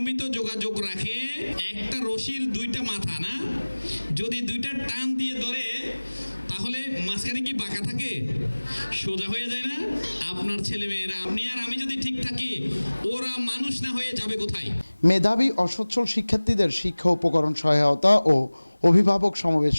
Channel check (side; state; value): both; inverted; correlation -1.00